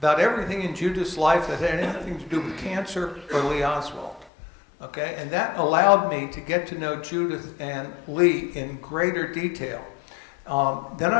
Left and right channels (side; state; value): right; drops out; at 4.3 s